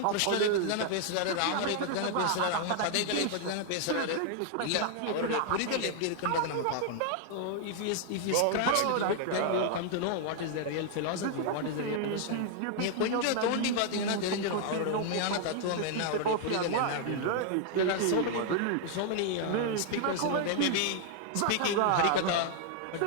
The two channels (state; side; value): different; both; correlation 0.00